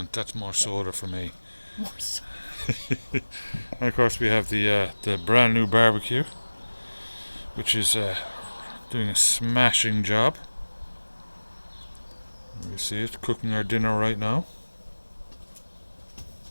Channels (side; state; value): both; inverted; correlation -1.00